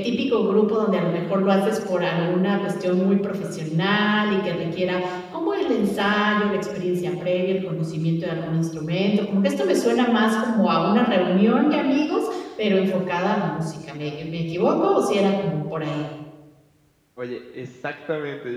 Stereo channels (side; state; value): both; identical; correlation 1.00